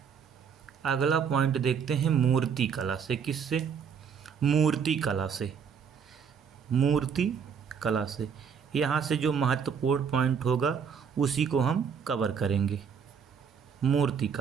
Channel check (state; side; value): quieter; left; 6.9 dB